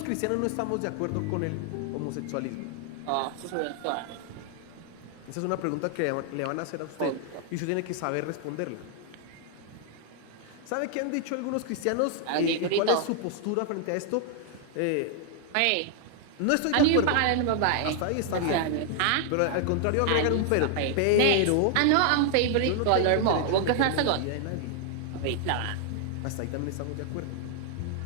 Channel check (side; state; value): both; different; correlation 0.00